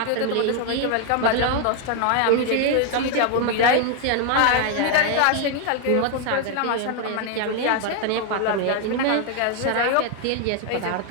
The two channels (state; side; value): different; both; correlation 0.01